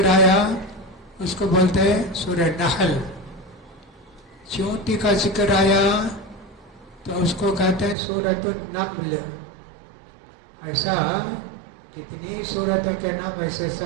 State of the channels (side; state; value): left; drops out; at 8.0 s